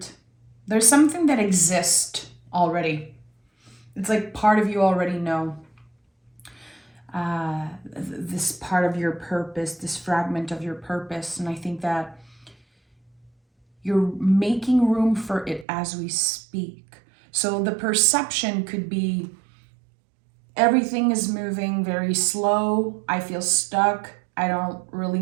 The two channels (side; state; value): left; drops out; at 15.7 s